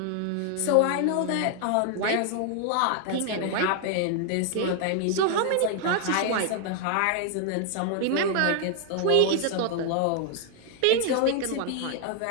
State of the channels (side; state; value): both; different; correlation 0.00